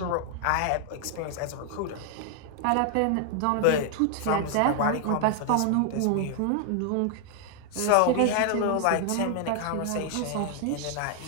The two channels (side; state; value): both; different; correlation 0.00